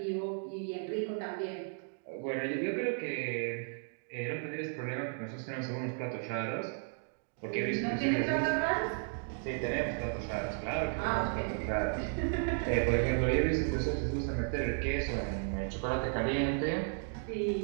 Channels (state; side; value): silent; left; 55 dB below the other